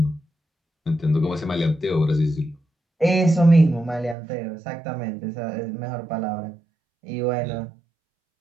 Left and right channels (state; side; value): drops out; left; at 4.2 s